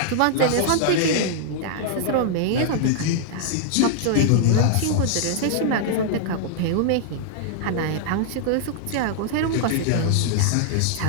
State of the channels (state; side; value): different; both; correlation -0.01